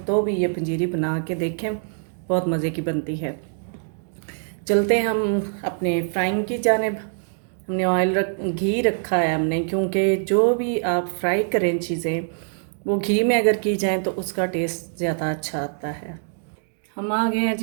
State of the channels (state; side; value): silent; left; digital silence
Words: तो भी ये पंजीरी बना के देखें, बहुत मज़े की बनती है। चलते हैं हम अपने फ्राइंग की जानिब। हमने घी रखा है हमने, क्योंकि जो भी आप फ्राई करें चीज़ें वो घी में अगर की जाएं तो उसका टेस्ट ज़्यादा अच्छा आता है। हम आ गए हैं